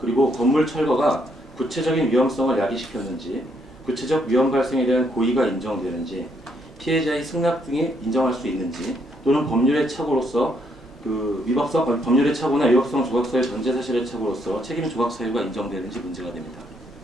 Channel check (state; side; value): normal; both; correlation 0.73